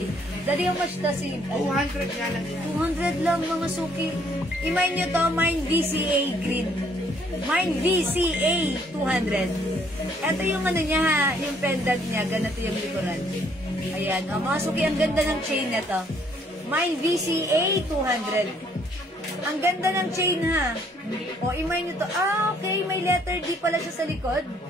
Daddy, how much to si... 200 nga lang yan. 200 lang, mga suki. I-mine nyo to, mine VCA green. Mine VCA 200. Ito yung ano niya, ha, yung pendant niya. Ganito yung likuran. Ayan, o, mga suki, ang ganda ng chain na to. Mine VCA 200. Ang ganda ng chain, ha. O, i-mine nyo to. Ah, okay. May letter D pala siya sa likod.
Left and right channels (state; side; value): normal; both; correlation 0.65